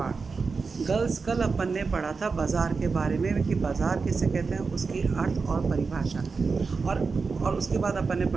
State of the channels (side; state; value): left; quieter; 4.7 dB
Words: गर्ल्स, कल अपन ने पढ़ा था बाज़ार के बारे में कि बाज़ार किसे कहते हैं, उसकी अर्थ और परिभाषा। और उसके बाद अपन ने